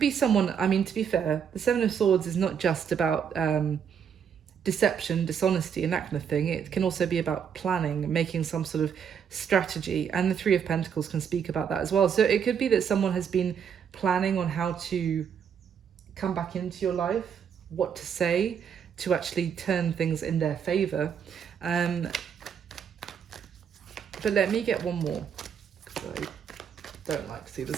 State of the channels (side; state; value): left; quieter; 7.6 dB